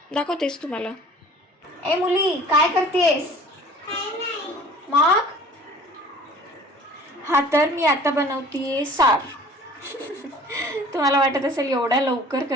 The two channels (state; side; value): normal; both; correlation 0.48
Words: दाखवतेस तुम्हाला. ए मुली, काय करतेस मग? हा, तर मी आता बनवतीये सार. तुम्हाला वाटत असेल एवढ्या लवकर